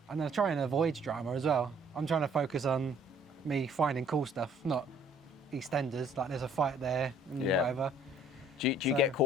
I try and avoid drama as well. I'm trying to focus on me finding cool stuff, not EastEnders, like there's a fight there and whatever. Do you get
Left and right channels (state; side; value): normal; both; correlation 0.59